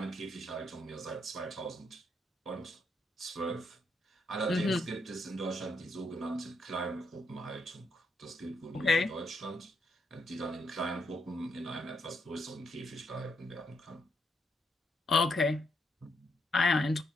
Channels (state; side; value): normal; both; correlation 0.77